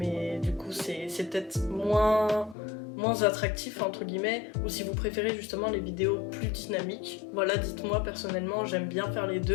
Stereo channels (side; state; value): right; drops out; at 2.6 s